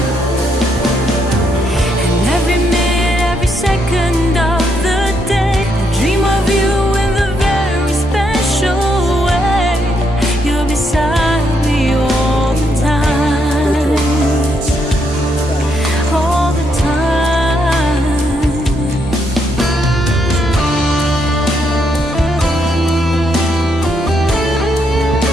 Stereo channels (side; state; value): both; normal; correlation 0.76